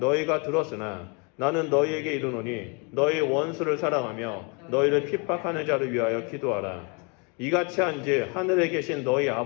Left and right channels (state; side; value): quieter; right; 33.3 dB